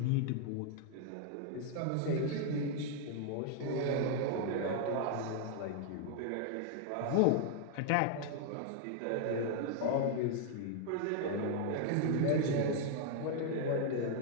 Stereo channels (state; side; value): different; both; correlation 0.00